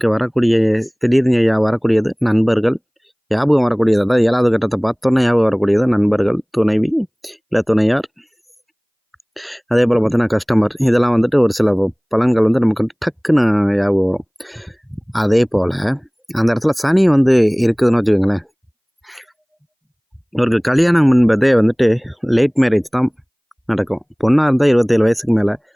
வரக்கூடிய திடீர்னு வரக்கூடியது நண்பர்கள். ஞாபகம் வரக்கூடியது அதாவது 7வது கட்டத்த பார்த்தோன்னே ஞாபகம் வரக்கூடியது நண்பர்கள், துணைவி, இல்ல துணையார். அதேபோல பார்த்தீங்கன்னா கஸ்டமர். இதெல்லாம் வந்துட்டு ஒரு சில பலன்கள் வந்து நமக்கு டக்குன்னு ஞாபகம் வரும். அதேபோல அந்த இடத்துல சனி வந்து இருக்குதுன்னு வச்சுக்கோங்களேன். இவருக்கு கல்யாணம் என்பதே வந்துட்டு லேட் மேரேஜ் தான் நடக்கும். பொண்ணாக இருந்தால் 27 வயசுக்கு மேலே,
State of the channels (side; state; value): both; identical; correlation 1.00